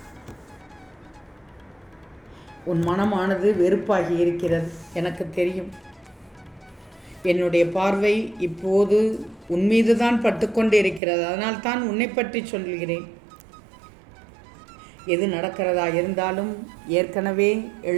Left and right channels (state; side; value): drops out; left; at 11.0 s